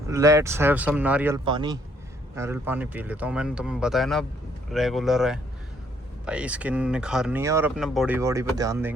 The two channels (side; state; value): both; normal; correlation 0.68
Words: लेट्स हैव सम नारियल पानी पी लेता हूँ। मैंने तुम्हें बताया ना, रेगुलर है भाई, स्किन निखारनी है और अपने बॉडी पे ध्यान